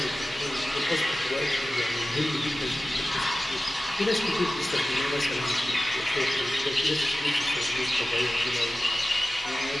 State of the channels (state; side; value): normal; both; correlation 0.96